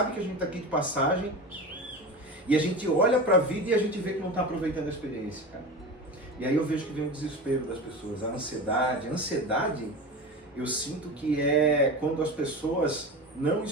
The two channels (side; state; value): both; normal; correlation 0.28